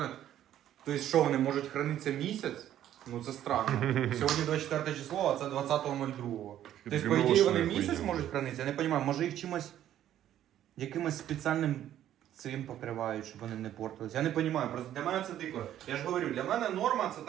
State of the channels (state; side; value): quieter; left; 11.6 dB